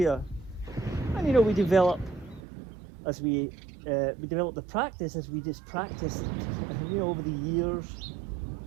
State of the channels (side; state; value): left; drops out; at 2.4 s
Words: And you know, we develop the practice as we just practice. And you know, over the years,